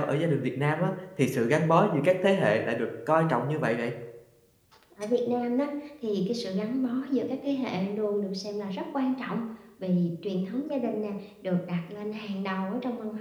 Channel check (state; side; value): identical; both; correlation 1.00